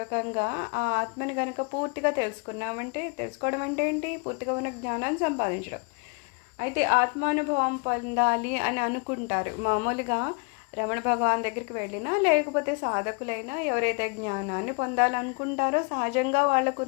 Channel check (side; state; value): right; quieter; 33.2 dB